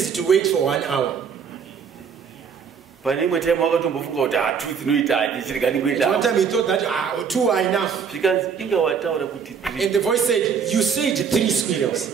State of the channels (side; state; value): left; quieter; 6.6 dB